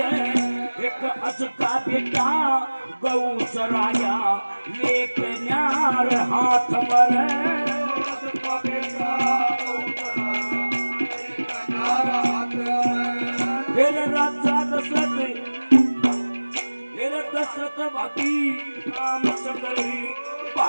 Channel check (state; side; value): inverted; both; correlation -1.00